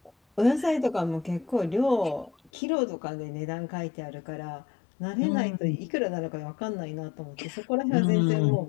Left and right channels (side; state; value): right; drops out; at 2.5 s